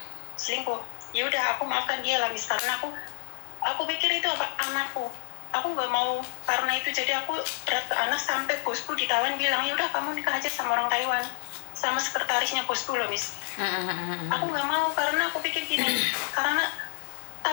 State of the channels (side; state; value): right; silent; digital silence